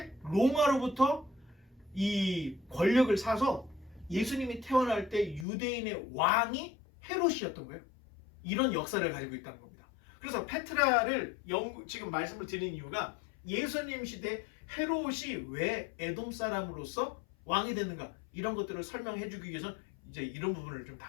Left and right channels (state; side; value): drops out; right; at 5.5 s